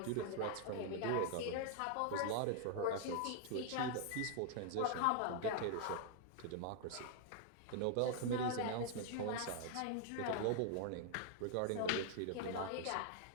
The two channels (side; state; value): both; different; correlation 0.00